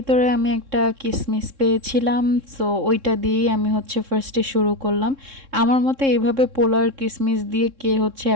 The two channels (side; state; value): left; late; 3.7 ms